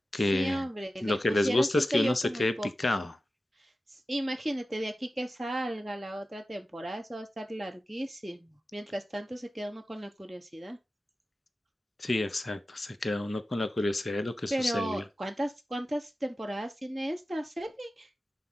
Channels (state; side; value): normal; both; correlation 0.94